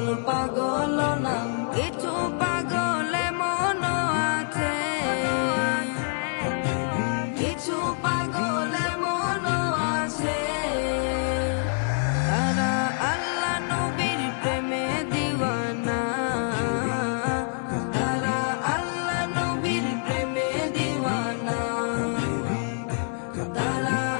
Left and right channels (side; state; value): right; silent; digital silence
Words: পাগল না। কিছু পাগল মন আছে, কিছু পাগল মন আছে। তারা আল্লাহ নবীর প্রেমে দিওয়ানা,